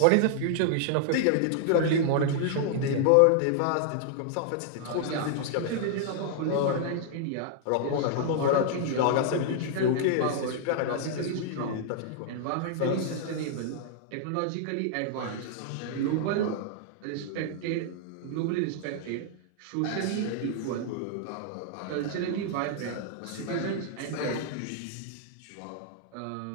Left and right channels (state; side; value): different; both; correlation -0.01